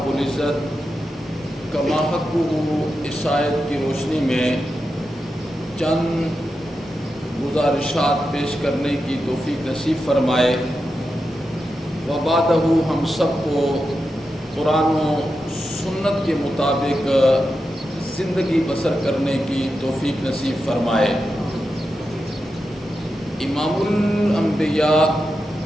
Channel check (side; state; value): both; normal; correlation 0.89